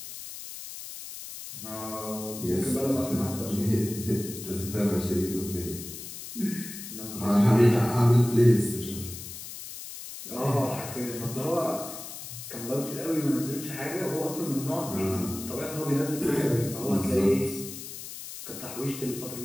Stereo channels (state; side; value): noise; left; hiss, 11 dB below the sound